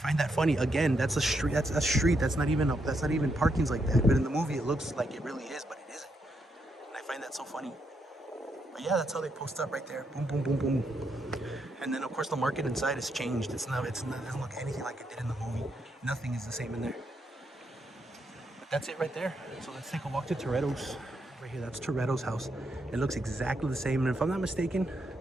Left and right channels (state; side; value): normal; both; correlation 0.79